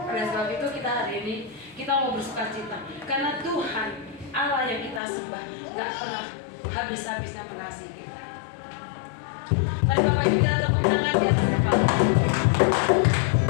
Oleh sebab itu kita hari ini kita mau bersuka cita, karena Tuhan Allah yang kita sembah nggak pernah habis-habisnya mengasihi kita. Nah, Bapak Ibu, kita tepuk tangan di atas kepala.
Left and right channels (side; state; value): right; drops out; at 5.0 s